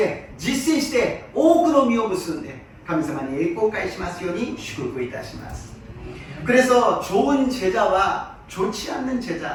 実践して多くの実を結んで神様に栄光を返しますように祝福いたします。 그래서 좋은 제자와 좋지 않는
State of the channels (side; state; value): both; identical; correlation 1.00